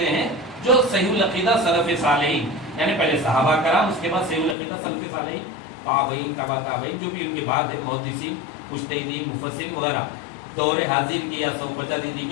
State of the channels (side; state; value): right; drops out; at 4.5 s